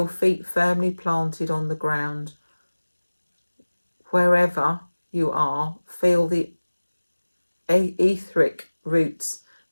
feet firmly planted on the ground. Wherever you are, feel the etheric roots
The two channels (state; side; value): inverted; both; correlation -1.00